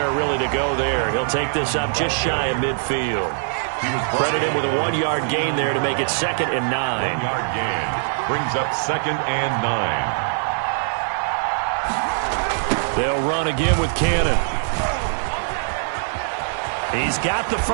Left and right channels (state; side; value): silent; left; digital silence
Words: really to go there. He'll take this up just shy of midfield. Credited with a 1-yard gain there to make it 2nd and 9. 1-yard gain brings up 2nd and 9. They'll run again with Cannon. He's got the